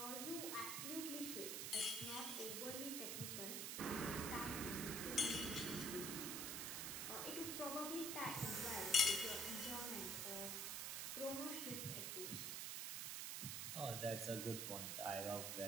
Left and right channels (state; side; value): noise; right; hiss, 1 dB below the sound